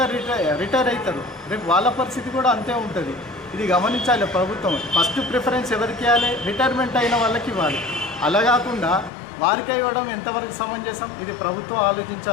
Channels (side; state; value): right; drops out; at 9.1 s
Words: రిటైర్ అవుతారు. రేపు వాళ్ళ పరిస్థితి కూడా అంతే ఉంటుంది. ఇది గమనించాలి ప్రభుత్వం. ఫస్ట్ ప్రిఫరెన్స్ ఎవరికి ఇవ్వాలి? రిటైర్మెంట్ అయిన వాళ్ళకి ఇవ్వాలి. అలా కాకుండా వారికి ఇవ్వడం ఎంతవరకు సమంజసం? ఇది ప్రభుత్వం